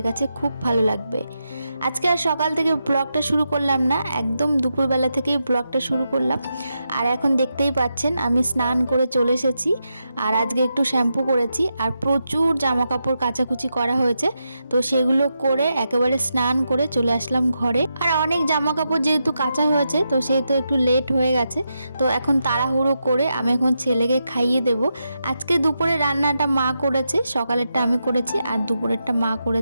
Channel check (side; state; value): both; inverted; correlation -0.86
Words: কাছে খুব ভালো লাগবে। আজকে আর সকাল থেকে ব্লগটা শুরু করলাম না, একদম দুপুরবেলা থেকেই ব্লগটা শুরু করলাম। আর এখন দেখতেই পাচ্ছেন আমি স্নান করে চলে এসেছি আর আজকে একটু শ্যাম্পু করেছি আর প্রচুর জামা কাপড় কাচাকুচি করা হয়েছে, তো সেগুলো করে একেবারে স্নান করে চলে আসলাম ঘরে। আর অনেক জামা কাপড় যেহেতু কাচা হয়েছে তো সেহেতু একটু লেট হয়ে গেছে, তো এখন তাড়াহুড়ো করে আমি এখন ছেলেকে খাইয়ে দেব। আজকে দুপুরে রান্নাটা মা করেছে, সকালেরটা আমি করেছি আর দুপুরেরটা মা